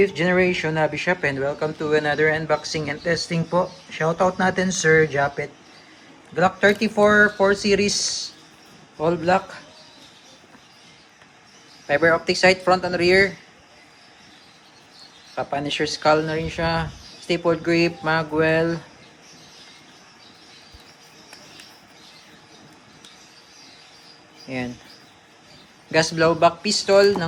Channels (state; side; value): identical; both; correlation 1.00